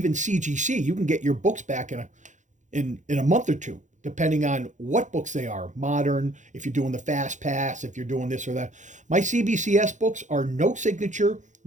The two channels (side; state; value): left; late; 0.35 ms